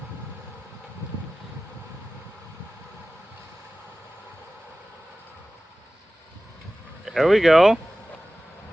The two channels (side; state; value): both; normal; correlation 0.96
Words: There we go.